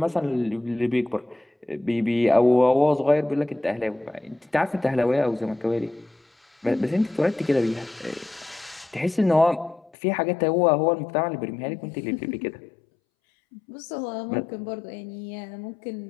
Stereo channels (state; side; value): drops out; right; at 9.9 s